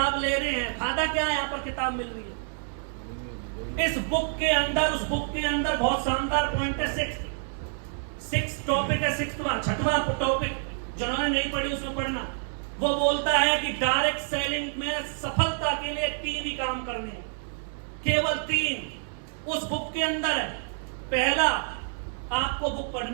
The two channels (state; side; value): silent; left; 59 dB below the other